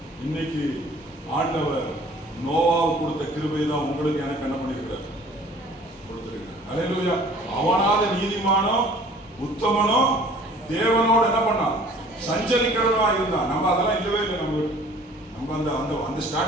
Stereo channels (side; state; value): both; normal; correlation 0.51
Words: இன்னைக்கு ஆண்டவர் நோவாவுக்கு கொடுத்த கிருபை தான் உங்களுக்கு எனக்கு என்ன பண்ணிருக்கிறார்? கொடுத்திருக்கிறார். அல்லேலூயா. அவனால நீதிமானோ உத்தமனோ தேவனோடு என்ன பண்ணான்? சஞ்சரிக்கிறவனா இருந்தான். நம்ம அதெல்லாம் இல்லவே இல்லை. நம்ம அந்த அந்த அந்த